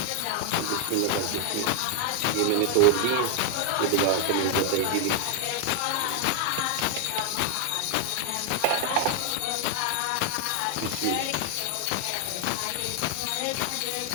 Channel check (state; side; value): different; both; correlation 0.00